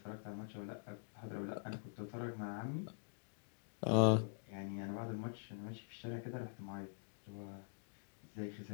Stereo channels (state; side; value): silent; right; digital silence